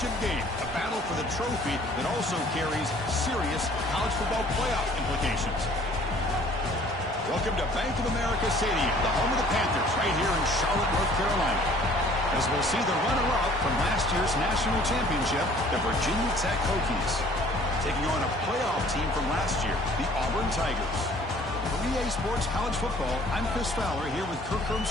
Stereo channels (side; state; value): both; normal; correlation 0.54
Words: game, a battle for the trophy that also carries serious college football playoff implications. Welcome to Bank of America Stadium, the home of the Panthers, right here in Charlotte, North Carolina, as we'll see the runner-up from last year's national championship, the Virginia Tech Hokies, taking on a playoff team from last year, the Auburn Tigers. For EA Sports College Football, I'm Chris Fowler here with Kirk